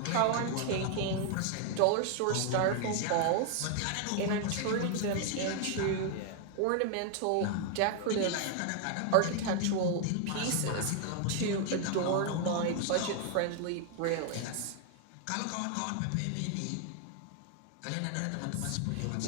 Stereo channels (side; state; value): both; different; correlation 0.00